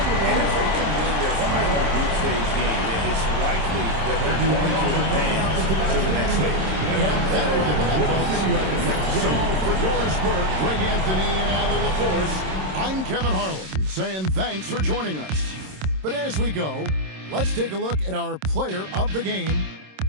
And if they can win their final group stage game, it's likely that they're going to advance to the next stage. And that'll wrap it up, folks. So for Doris Burke, Greg Anthony, and Allie LaForce, I'm Kevin Harlan saying thanks for joining us. But as we go, let's take a look at our player of the game,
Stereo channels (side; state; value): left; late; 26 ms